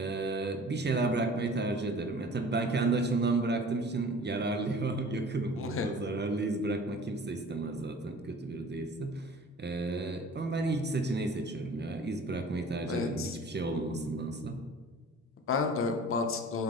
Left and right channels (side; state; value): both; normal; correlation 0.45